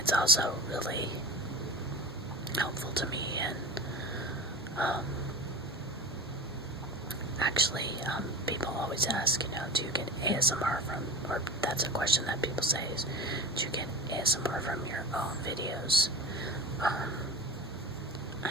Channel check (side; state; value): both; normal; correlation 0.31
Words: also really helpful to me, and actually people always ask, you know, do you get ASMR from, or that's a question that people say is, do you get ASMR from your own videos?